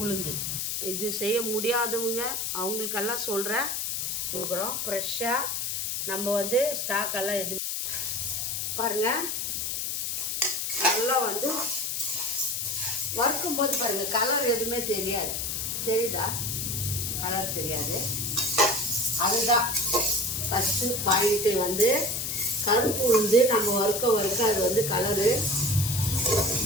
உளுந்து இது செய்ய முடியாதவங்க அவங்களுக்கெல்லாம் சொல்கிறேன், கொடுக்குறோம் ஃப்ரெஷ்ஷாக. நம்ம வந்து ஸ்டாக்கெல்லாம் எதுவும் பாருங்கள். நல்லா வந்து வறுக்கும் போது பாருங்கள், கலர் எதுவுமே தெரியாது, தெரியுதா? கலர் தெரியாது. அதுதான் ஃபஸ்ட்டு பாயிண்ட்டு வந்து கருப்பு உளுந்து நம்ம வறுக்க அது வந்து கலரு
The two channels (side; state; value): left; noise; hiss, 2 dB below the sound